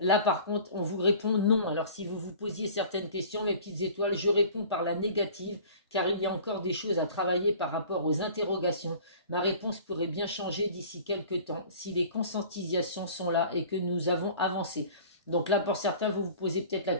Là, par contre, on vous répond non. Alors, si vous vous posiez certaines questions, mes petites étoiles, je réponds par la négative, car il y a encore des choses à travailler par rapport aux interrogations. Ma réponse pourrait bien changer d'ici quelques temps, si les conscientisations sont là et que nous avons avancé. Donc là, pour certains, vous vous posez peut-être la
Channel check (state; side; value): inverted; both; correlation -0.45